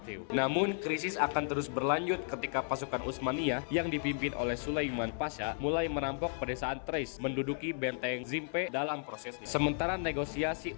Namun krisis akan terus berlanjut ketika pasukan Utsmaniyah yang dipimpin oleh Sulaiman Pasha mulai merampok pedesaan Thrace, menduduki benteng Zimpe dalam prosesnya. Sementara negosiasi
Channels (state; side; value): silent; right; 55 dB below the other